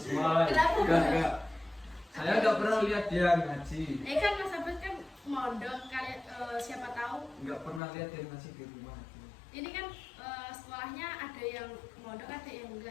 Kenapa? Enggak. Saya enggak pernah lihat dia ngaji. Kan Mas Abed kan mondok kalian siapa tahu. Enggak pernah lihat dia ngaji di rumah. Ini kan sekolahnya ada yang mondok ada yang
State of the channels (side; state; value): right; drops out; at 7.8 s